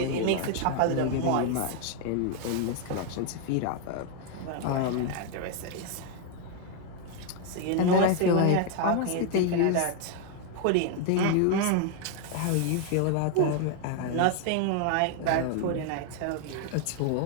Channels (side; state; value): both; different; correlation 0.00